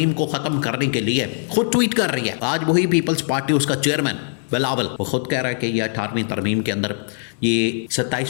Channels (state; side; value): silent; right; 65 dB below the other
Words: को ख़त्म करने के लिए खुद ट्वीट कर रही है। आज वही पीपल्स पार्टी, उसका चेयरमैन बिलावल, वो खुद कह रहा है कि ये 18वीं तरमीम के अंदर, ये